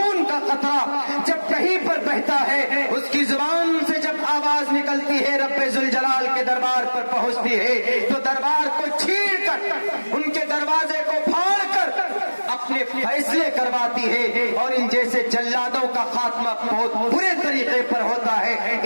کا قطرہ جب کہیں پر بہتا ہے، اس کی زبان سے جب آواز نکلتی ہے رب ذوالجلال کے دربار پر پہنچتی ہے، تو دربار کو چھین کر، ان کے دروازے کو پھاڑ کر اپنے فیصلے کرواتی ہے، اور ان جیسے جلادوں کا خاتمہ بہت برے طریقے پر ہوتا ہے۔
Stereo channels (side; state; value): both; inverted; correlation -1.00